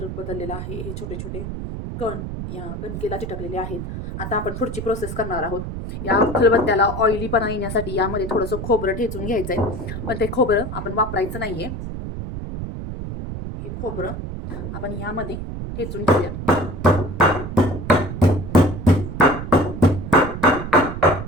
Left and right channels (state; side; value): noise; right; rumble, 7 dB below the sound